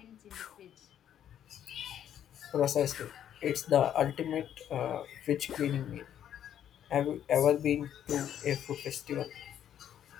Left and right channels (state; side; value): quieter; right; 10.2 dB